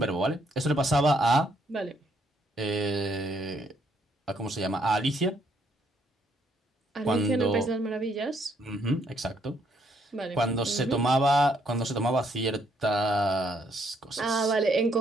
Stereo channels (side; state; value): both; normal; correlation 0.71